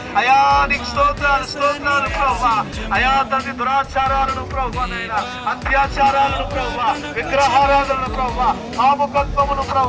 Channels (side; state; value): both; identical; correlation 1.00